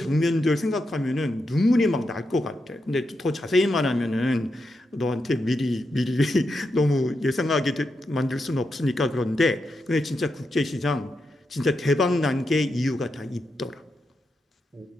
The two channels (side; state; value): both; normal; correlation 0.86